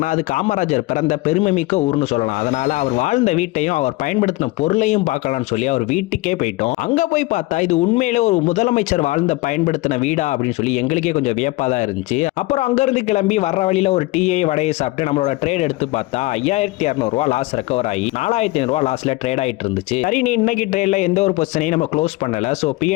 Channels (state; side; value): quieter; right; 20.7 dB